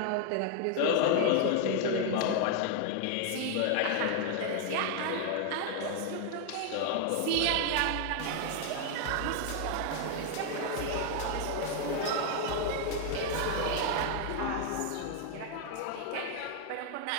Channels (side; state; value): both; different; correlation 0.00